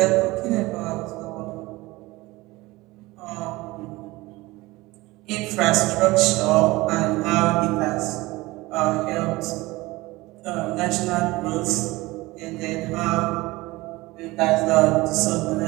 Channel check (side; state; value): left; quieter; 20.6 dB